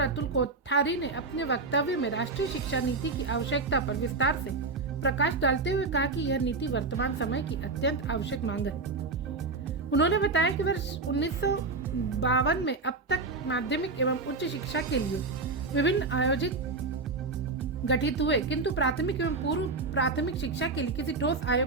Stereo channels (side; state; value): left; quieter; 3.8 dB